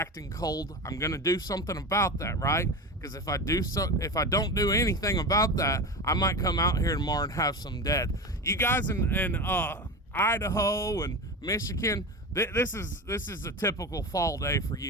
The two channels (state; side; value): normal; both; correlation 0.25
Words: cold. I'm going to do something about that, right? Because if I don't do anything about that, I might come out here tomorrow and have some dead. You guys in Idaho and Michigan, this is a typical fall day for